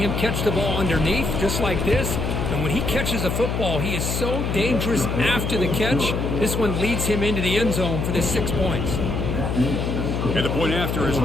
catch the ball underneath, just like this. And when he catches a football, he is so dangerous after the catch. This one leads him into the end zone for the 6 points. And the point after is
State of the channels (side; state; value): left; noise; hum, 1 dB below the sound